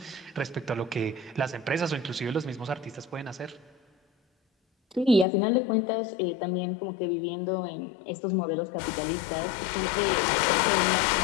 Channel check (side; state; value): right; drops out; at 5.2 s